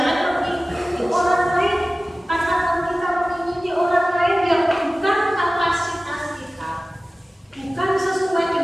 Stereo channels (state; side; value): normal; both; correlation 0.97